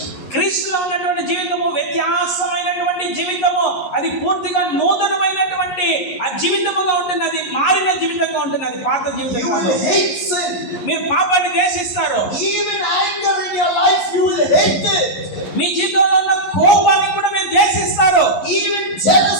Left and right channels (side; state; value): right; late; 11 ms